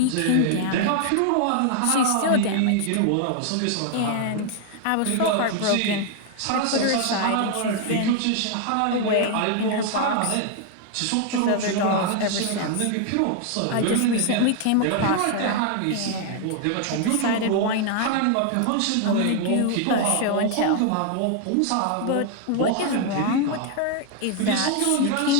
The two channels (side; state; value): both; different; correlation 0.00